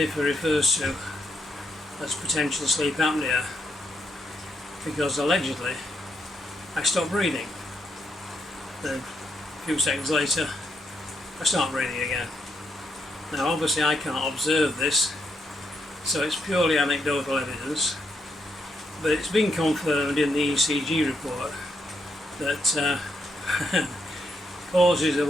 refers to as potential sleep apnea, because allegedly I stop breathing, then a few seconds later I start breathing again. Now obviously I can't observe this, so it's purely anecdotal evidence, but it's been confirmed in the ECG report that pauses of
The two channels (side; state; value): both; normal; correlation 0.78